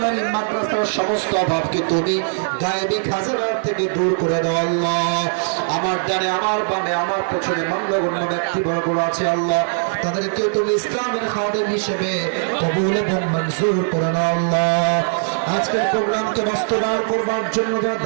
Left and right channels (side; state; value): left; silent; 66 dB below the other